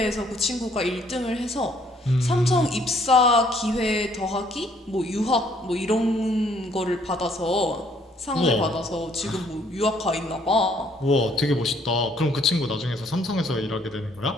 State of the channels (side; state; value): both; normal; correlation 0.64